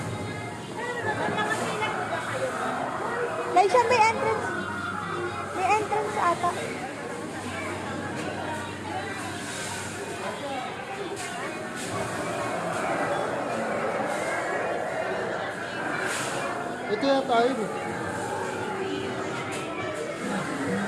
Laisha, may entrance. May entrance ata. Ito yan tayo.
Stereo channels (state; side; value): identical; both; correlation 1.00